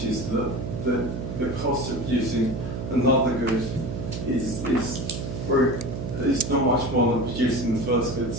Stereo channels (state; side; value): noise; right; hum, 5 dB below the sound